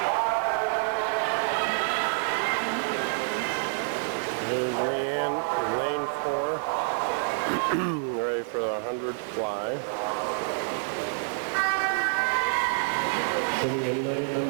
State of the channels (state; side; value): silent; left; 56 dB below the other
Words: Here's Leanne, lane 4, ready for the 100 fly. Sitting in lane